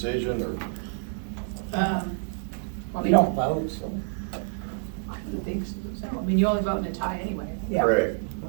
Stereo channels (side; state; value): left; silent; digital silence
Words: or? You don't vote, so. I don't think so. I mean, you only vote in a tie anyway. Yeah. Correct.